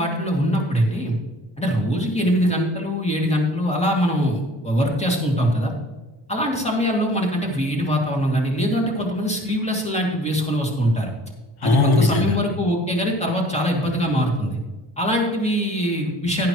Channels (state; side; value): normal; both; correlation 0.51